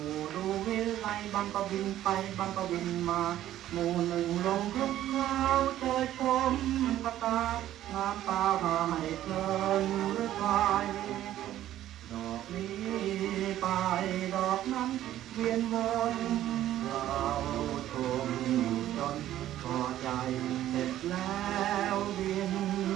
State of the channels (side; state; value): left; quieter; 12.9 dB